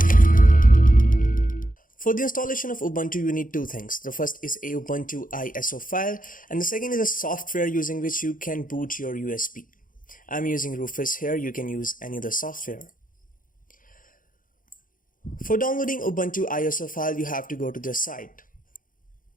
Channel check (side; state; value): right; late; 0.39 ms